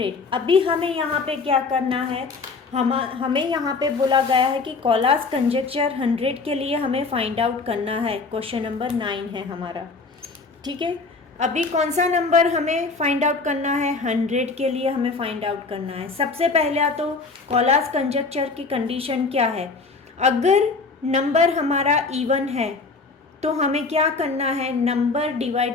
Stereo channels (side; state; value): right; quieter; 4.2 dB